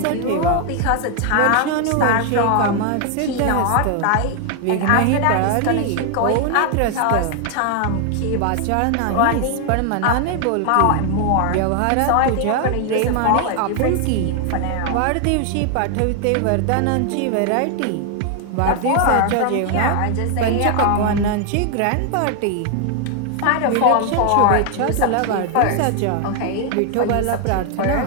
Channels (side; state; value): both; different; correlation 0.00